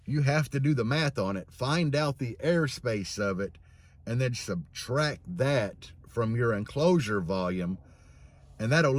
you have to do the math on it, find out the airspace of it, and then subtract that from your enclosure volume, and that'll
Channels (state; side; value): identical; both; correlation 1.00